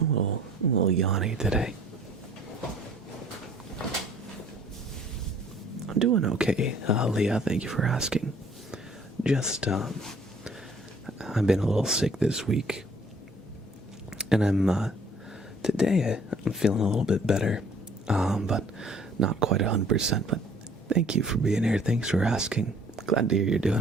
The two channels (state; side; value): normal; both; correlation 0.56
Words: a little yawny today. I'm doing okay, Leah. Thank you for asking. Just, I've been a little sick this week, and today I'm feeling a little bit better, but not quite 100%. But thank you for being here. Thanks for asking. Glad to hear you're